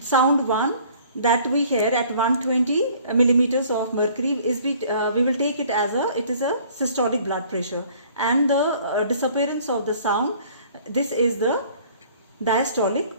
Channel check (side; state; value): both; inverted; correlation -0.54